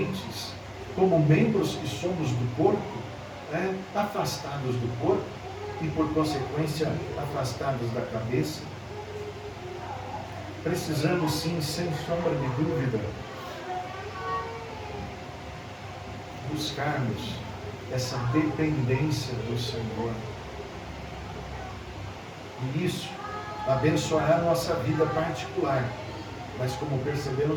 como membros que somos do corpo, afastados do corpo e, por consequência, afastados da cabeça. precisamos sim, sem sombra de dúvida, buscarmos essa dependência do Senhor. E isso abençoará a nossa vida particular, mas como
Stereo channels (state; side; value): identical; both; correlation 1.00